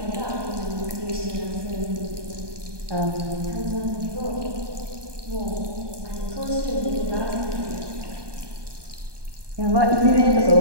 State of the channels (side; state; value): left; late; 1.2 ms